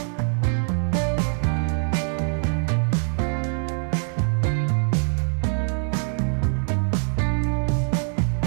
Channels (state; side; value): silent; left; 59 dB below the other